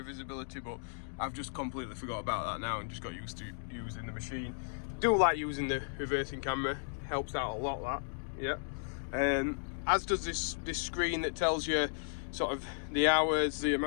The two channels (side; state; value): right; silent; digital silence